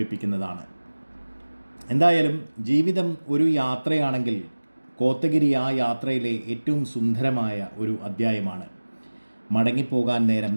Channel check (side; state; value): both; inverted; correlation -1.00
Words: എന്തായാലും ജീവിതം ഒരു യാത്രയാണെങ്കിൽ കോത്തഗിരി ആ യാത്രയിലെ ഏറ്റവും സുന്ദരമായ ഒരു അധ്യായമാണ്. മടങ്ങിപ്പോകാൻ നേരം